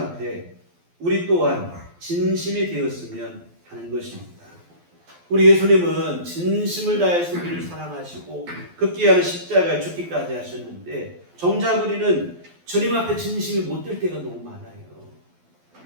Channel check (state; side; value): late; left; 12 ms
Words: 우리 또한 진심이 되었으면 하는 것입니다. 우리 예수님은 진심을 다해서 우리를 사랑하시고 극기하는 십자가에 죽기까지 하셨는데, 정작 우리는 주님 앞에 진심이 못 될 때가 너무 많아요.